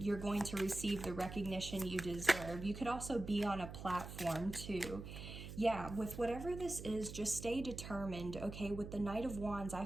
going to receive the recognition you deserve. You could also be on a platform too. yeah, with whatever this is, just stay determined, okay? With the Knight of Wands, I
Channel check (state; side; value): noise; right; hum, 10 dB below the sound